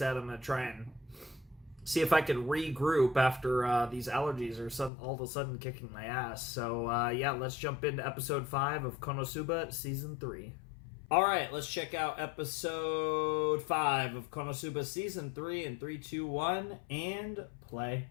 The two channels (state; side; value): drops out; right; at 4.9 s